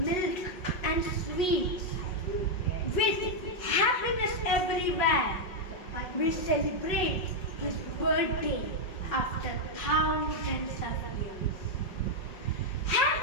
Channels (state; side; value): late; right; 5.5 ms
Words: and sweets, with happiness everywhere, we celebrate his birthday after thousands of years.